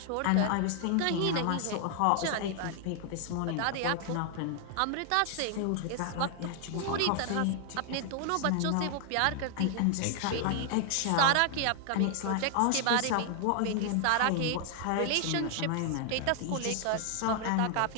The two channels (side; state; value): both; different; correlation 0.00